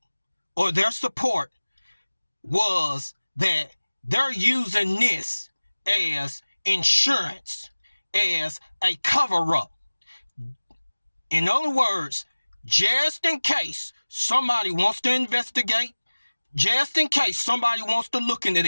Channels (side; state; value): both; inverted; correlation -1.00